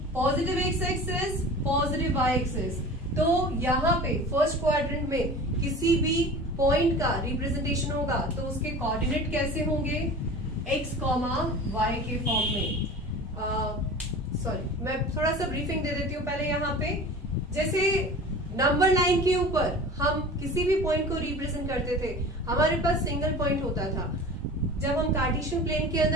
positive x axis, positive y axis. तो यहाँ पे first quadrant में किसी भी पॉइंट का रिप्रेजेंटेशन होगा तो उसके कोऑर्डिनेट कैसे होंगे, x, y के फॉर्म में. सॉरी, मैं थोड़ा सा ब्रीफिंग दे देती हूँ पहले. यहाँ पे जैसे नंबर लाइन के ऊपर हम किसी भी पॉइंट को रिप्रेजेंट करते थे, हमारे पास सिंगल पॉइंट होता था. जब हम कार्टेशियन प्लेन के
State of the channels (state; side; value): normal; both; correlation 0.38